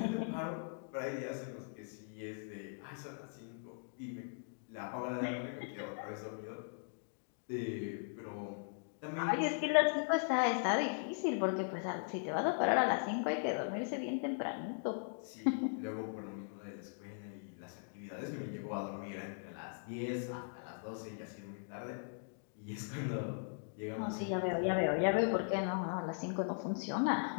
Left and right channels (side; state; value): right; silent; digital silence